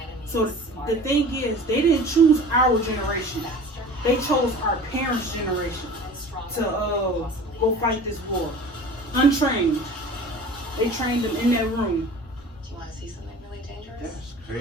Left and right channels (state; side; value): normal; both; correlation 0.41